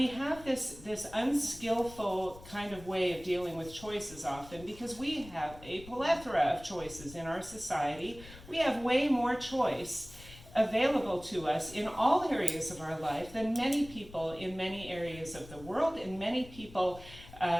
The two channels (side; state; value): left; noise; rumble, 18 dB below the sound